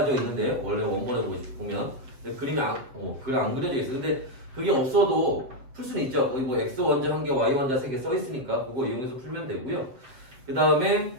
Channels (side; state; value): left; late; 7.5 ms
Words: 있는데, 원래 원본에 보면 그림이 그림 안 그려져 있어. 근데 그게 없어도 풀 수는 있죠. 거기 뭐 x 원자 1개, y 원자 3개 써 있으니까 그거 이용해서 풀면 되고요. 그 다음에